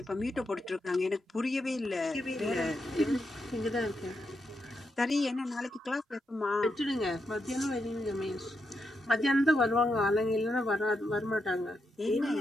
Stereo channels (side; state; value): both; normal; correlation 0.83